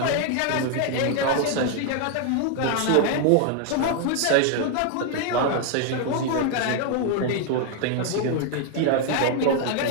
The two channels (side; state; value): both; different; correlation 0.00